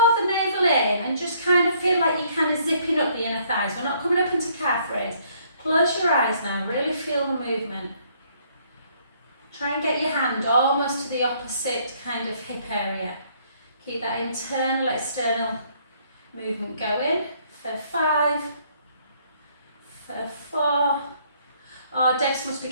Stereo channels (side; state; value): both; inverted; correlation -0.65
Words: the navel in and just kind of feel like you're kind of zipping up the inner thighs. We're not coming up into calf raise. Close your eyes now, really feel the movement. Try and get your hand almost to the opposite kind of hip area. Keep that internal, external movement going for 5, for 4. Oh, Debs must be